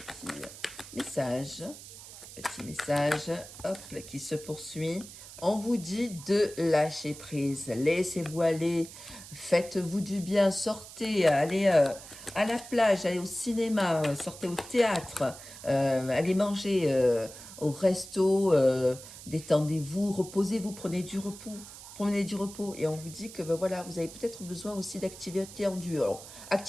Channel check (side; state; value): right; noise; hiss, 15 dB below the sound